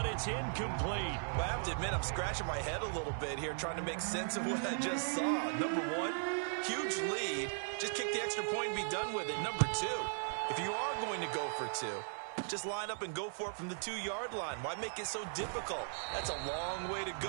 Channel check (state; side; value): silent; left; 53 dB below the other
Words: it's incomplete. Well, I have to admit, I'm scratching my head a little bit here, trying to make sense of what I just saw. Number one, huge lead. Just kick the extra point and be done with it. Number two, if you are going to go for two, just line up and go for it from the 2-yard line. Why make it so difficult? That's a long way to